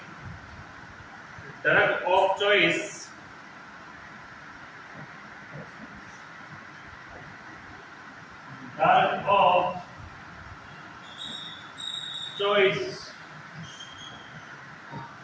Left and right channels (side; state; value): both; identical; correlation 1.00